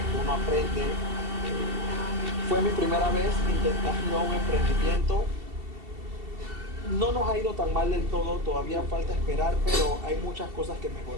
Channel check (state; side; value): late; left; 2.7 ms